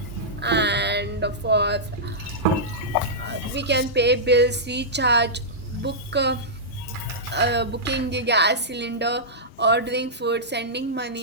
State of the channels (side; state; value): both; normal; correlation -0.13